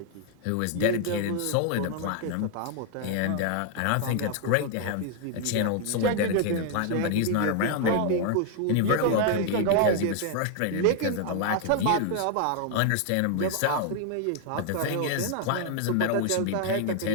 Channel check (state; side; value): different; both; correlation 0.00